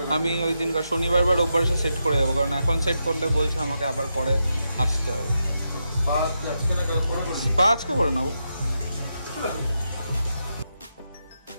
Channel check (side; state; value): both; inverted; correlation -0.85